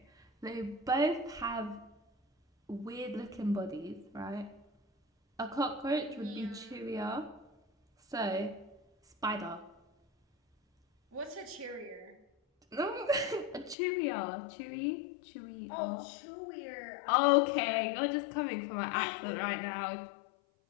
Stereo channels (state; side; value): drops out; right; at 13.8 s